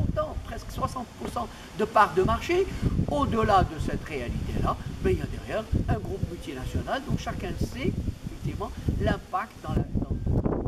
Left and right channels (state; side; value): identical; both; correlation 1.00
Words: presque 60% de parts de marché, au-delà de cette réalité-là, ben, il y a derrière un groupe multinational dont chacun sait effectivement l'impact non